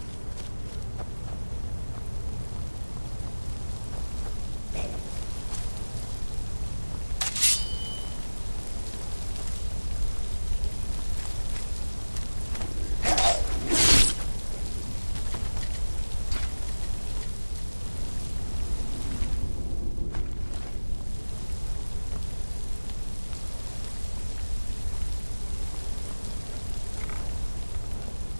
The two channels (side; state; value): both; inverted; correlation -1.00